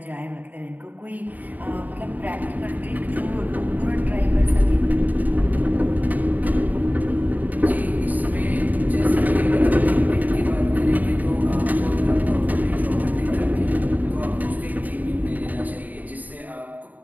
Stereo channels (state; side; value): late; left; 0.080 ms